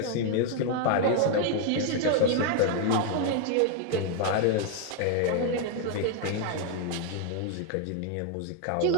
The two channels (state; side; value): different; both; correlation 0.00